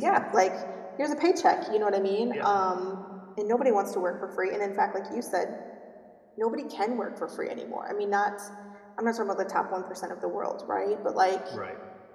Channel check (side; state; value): both; identical; correlation 1.00